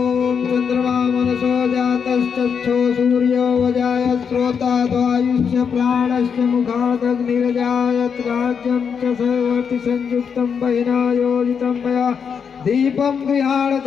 चक्षो सूर्यो वजायत श्रोता द्वायुष्य प्राणस्य मुखादग्निरजायत राज्यं च सर्वति संयुक्तं बहिना योजितं मया दीपं गृहाण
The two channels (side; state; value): right; quieter; 6.7 dB